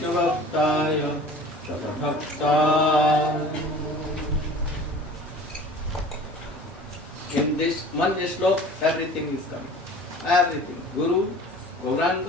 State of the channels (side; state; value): both; normal; correlation 0.44